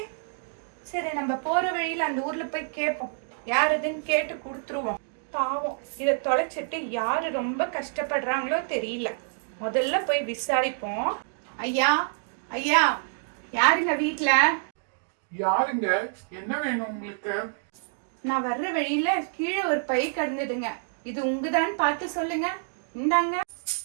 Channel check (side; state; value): left; silent; digital silence